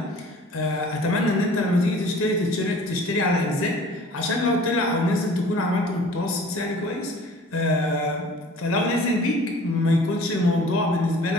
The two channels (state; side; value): normal; both; correlation 0.48